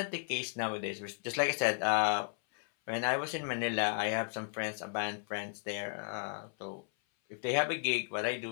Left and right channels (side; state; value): right; silent; 55 dB below the other